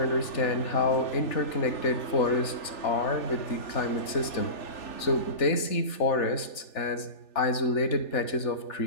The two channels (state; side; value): late; right; 3.4 ms